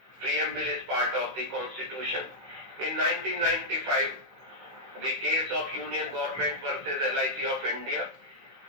preamble is part of the Constitution. In 1995, the case of Union Government versus LIC of India,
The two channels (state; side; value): late; left; 15 ms